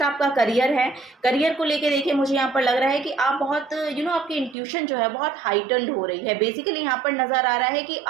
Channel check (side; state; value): left; drops out; at 4.5 s